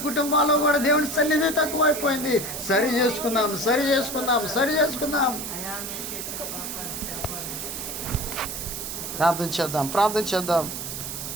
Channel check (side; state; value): right; noise; hiss, 6 dB below the sound